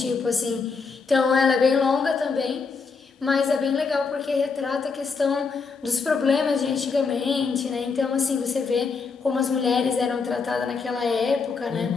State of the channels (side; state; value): right; quieter; 5.0 dB